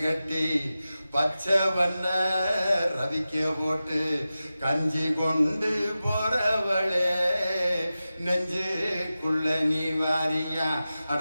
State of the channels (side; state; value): both; inverted; correlation -0.94